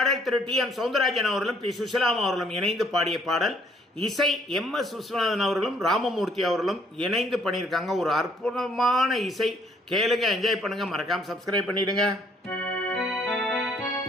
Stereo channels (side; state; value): both; normal; correlation 0.65